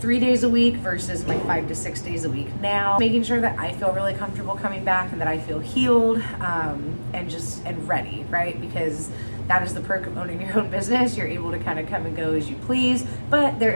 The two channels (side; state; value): both; inverted; correlation -1.00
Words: days a week versus my 5 to 6 days a week now, making sure that I feel really comfortable coming back and that I feel healed and ready, right? Because that is the perk of owning your own business. You're able to kind of come and go as you please, but there